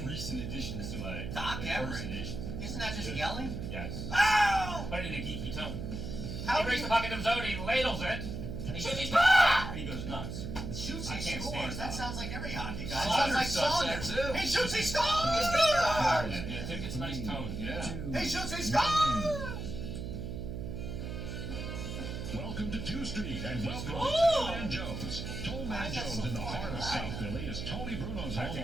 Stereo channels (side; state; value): right; noise; hum, 6 dB below the sound